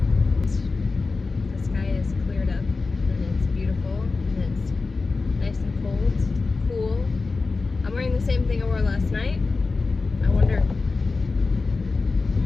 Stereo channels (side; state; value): right; quieter; 4.0 dB